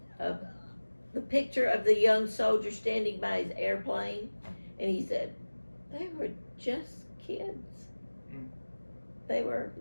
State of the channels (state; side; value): inverted; both; correlation -1.00